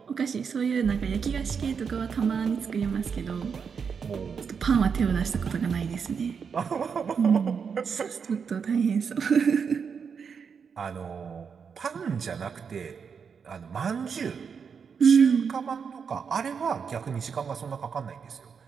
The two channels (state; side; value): quieter; left; 6.3 dB